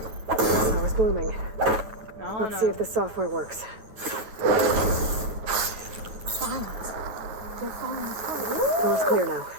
blooming. 然后 Let's 呢 see if the software works. Vines. They're falling apart. Door's clear now.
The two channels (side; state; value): left; late; 9.2 ms